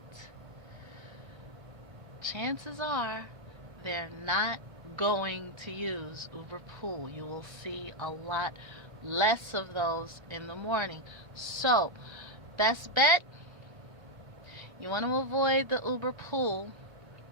chances are they're not going to use Uberpool. You will see a lot less of those in the morning. So, best bet, you want to avoid the Uberpool,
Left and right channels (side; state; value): left; late; 1.3 ms